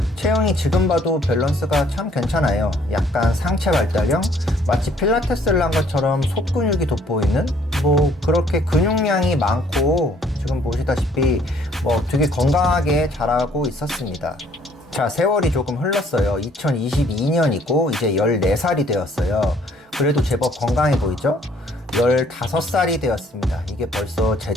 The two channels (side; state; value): both; normal; correlation 0.61